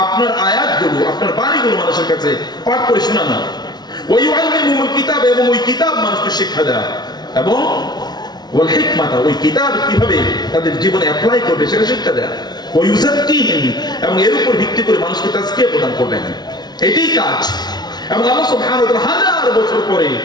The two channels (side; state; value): right; late; 0.20 ms